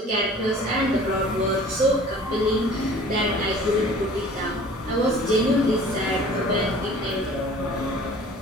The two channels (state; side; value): normal; both; correlation 0.47